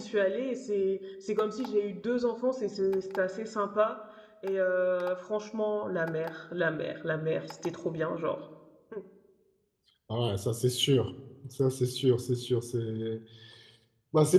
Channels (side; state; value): both; identical; correlation 1.00